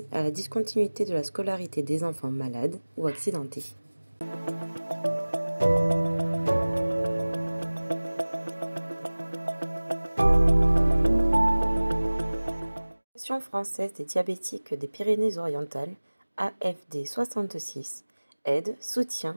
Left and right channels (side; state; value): both; inverted; correlation -1.00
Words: à la discontinuité de la scolarité des enfants malades ou accidentés. L'Association française des diabétiques des Pyrénées-Orientales, AFD 66, aide, soutient,